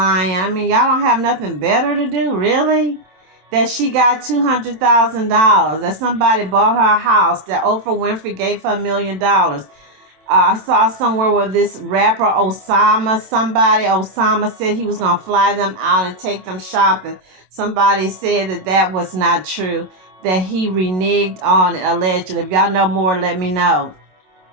I mean, y'all don't have nothing better to do, really? That she got $200,000. That somebody bought her a house. That Oprah Winfrey gave her $1 million. I saw somewhere where this rapper Osama said he was going to fly them out and take them shopping. Somebody said that was not true, that he reneged on it, allegedly. If y'all know more, let me know.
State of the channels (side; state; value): left; late; 27 ms